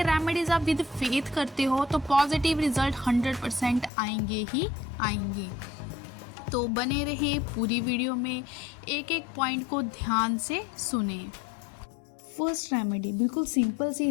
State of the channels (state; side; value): drops out; right; at 3.9 s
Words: रेमेडीज़ आप विद फेथ करते हो तो पॉजिटिव रिजल्ट 100% आएंगे ही आएंगे। तो बने रहे पूरी वीडियो में, एक एक पॉइंट को ध्यान से सुने। फर्स्ट रेमेडी बिल्कुल सिंपल सी